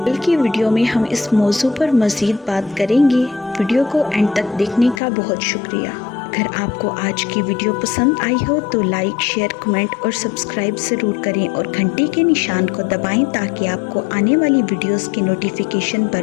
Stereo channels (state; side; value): drops out; right; at 5.0 s